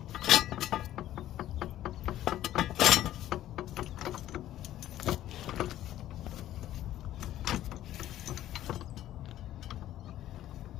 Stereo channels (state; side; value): quieter; right; 13.1 dB